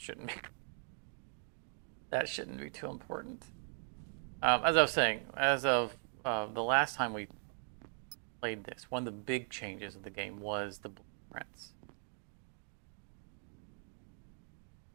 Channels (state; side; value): silent; left; 52 dB below the other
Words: be. That shouldn't be too important. As I was saying, as of the last time we played this, one of the big changes of the game was the blueprints.